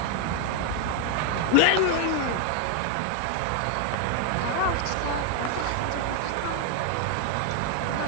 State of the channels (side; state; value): both; different; correlation 0.00